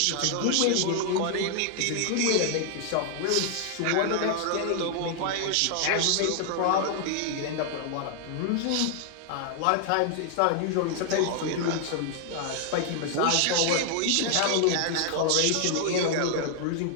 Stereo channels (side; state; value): both; different; correlation 0.00